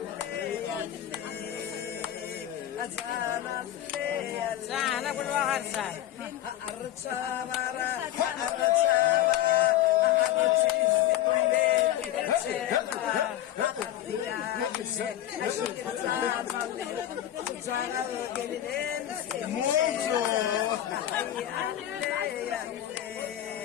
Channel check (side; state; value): right; quieter; 12.2 dB